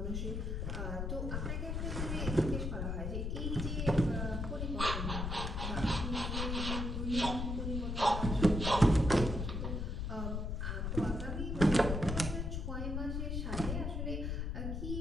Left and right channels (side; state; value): left; noise; rumble, 2 dB below the sound